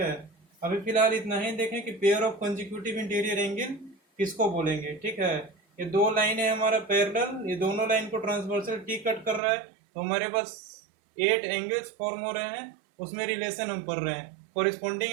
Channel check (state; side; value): drops out; left; at 9.4 s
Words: अभी फिलहाल इतना ही देखें कि pair of consecutive interior angle किसको बोलेंगे, ठीक है। ये दो लाइन है हमारा पैरेलल, ये दोनों लाइन को ट्रांसवर्सल टी कट कर रहा है, तो हमारे पास 8 एंगल्स फॉर्म हो रहे हैं, उसमें रिलेशन हम पढ़ रहे हैं। कोरिस्पॉन्डिंग